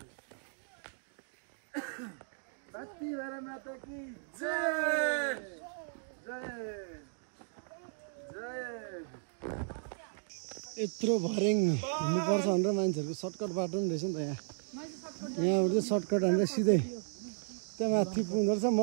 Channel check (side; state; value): left; silent; digital silence